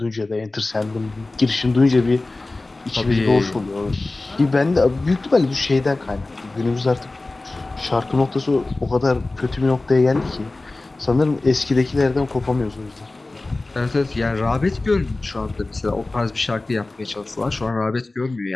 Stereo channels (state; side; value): quieter; right; 3.1 dB